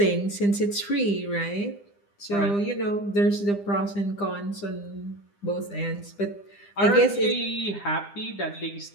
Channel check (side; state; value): right; late; 9.9 ms